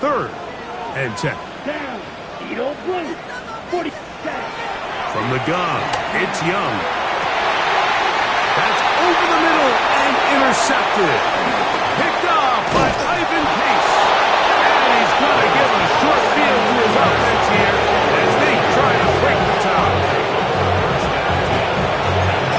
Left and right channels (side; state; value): both; identical; correlation 1.00